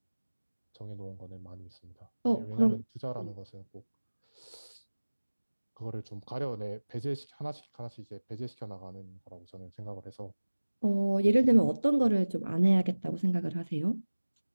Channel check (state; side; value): inverted; both; correlation -1.00